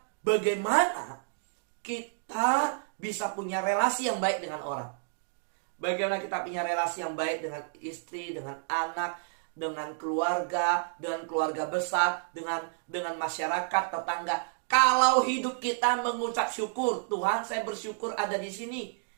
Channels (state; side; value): silent; left; digital silence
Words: bagaimana kita bisa punya relasi yang baik dengan orang? Bagaimana kita punya relasi yang baik dengan istri, dengan anak, dengan keluarga besar, dengan masyarakat, tetangga. Kalau hidup kita mengucap syukur, Tuhan saya bersyukur ada di sini,